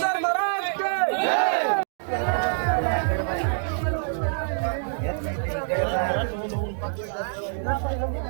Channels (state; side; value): silent; left; digital silence